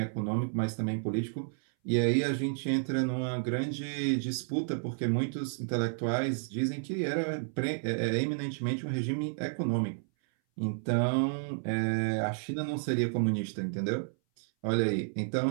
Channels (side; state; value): left; silent; 57 dB below the other